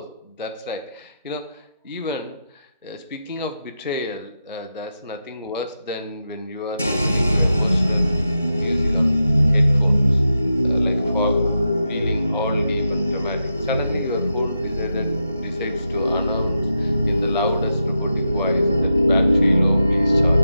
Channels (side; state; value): both; inverted; correlation -0.87